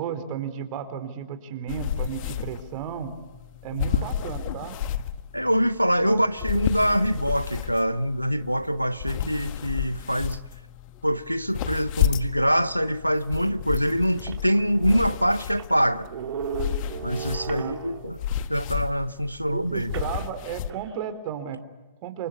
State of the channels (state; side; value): inverted; both; correlation -0.82